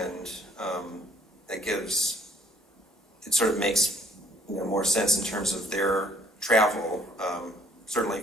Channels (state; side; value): normal; both; correlation 0.61